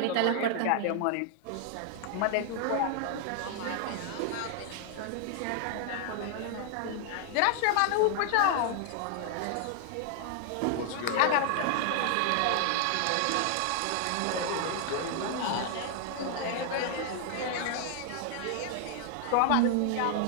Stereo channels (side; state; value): both; different; correlation 0.00